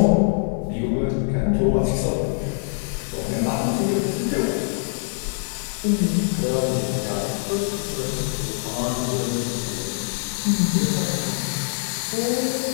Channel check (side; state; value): right; silent; digital silence